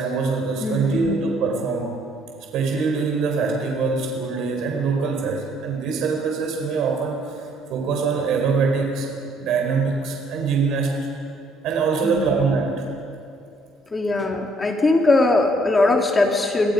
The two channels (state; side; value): normal; both; correlation 0.66